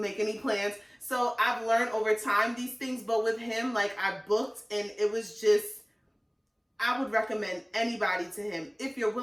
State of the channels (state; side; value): identical; both; correlation 1.00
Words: any plans. So I've learned over time these things, but with him, like, I booked, and it was just. I would recommend anybody to him if you're